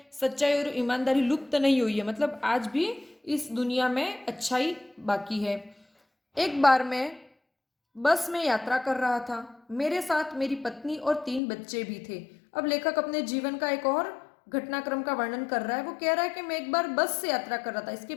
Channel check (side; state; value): right; drops out; at 11.4 s